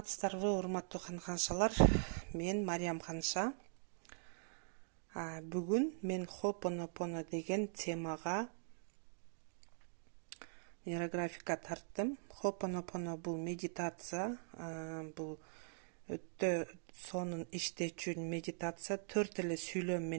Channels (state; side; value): silent; left; digital silence